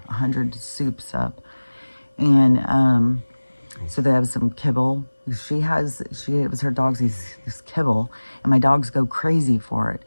soups up. And so they have some kibble. It was her dog's this kibble, and my dogs go crazy for it.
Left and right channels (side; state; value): both; inverted; correlation -1.00